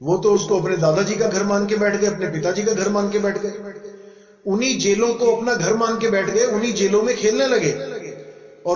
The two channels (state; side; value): identical; both; correlation 1.00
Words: वो तो उसको अपने दादाजी का घर मान के बैठ गए, अपने पिताजी का घर मान के बैठ गए, उन्हीं जेलों को अपना घर मान के बैठ गए, उन्हीं जेलों में खेलने लगे,